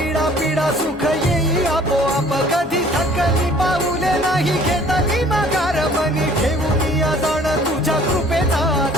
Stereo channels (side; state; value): both; normal; correlation 0.54